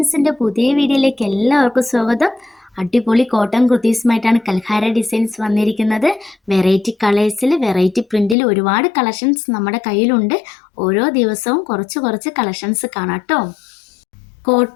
പുതിയ വീഡിയോയിലേക്ക് എല്ലാവർക്കും സ്വാഗതം. അടിപൊളി കോട്ടൺ കുർത്തീസുമായിട്ടാണ് കൽഹാര ഡിസൈൻസ് വന്നിരിക്കുന്നത്. വെറൈറ്റി കളേഴ്സിൽ വെറൈറ്റി പ്രിൻറ്റിൽ ഒരുപാട് കളക്ഷൻസ് നമ്മുടെ കയ്യിലുണ്ട്. ഓരോ ദിവസവും കുറച്ച് കുറച്ച് കളക്ഷൻസ് കാണാം കേട്ടോ.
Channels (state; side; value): drops out; right; at 8.3 s